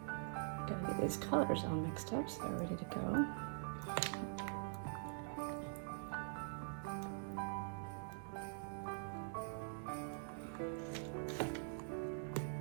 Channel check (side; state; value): left; silent; digital silence